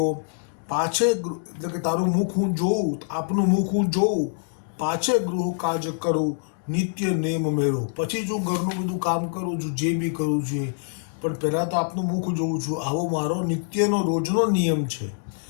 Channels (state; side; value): silent; right; digital silence